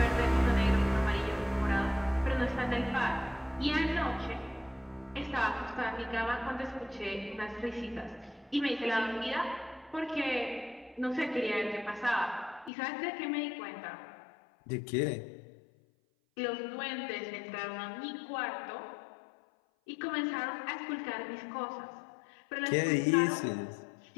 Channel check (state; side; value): drops out; right; at 12.7 s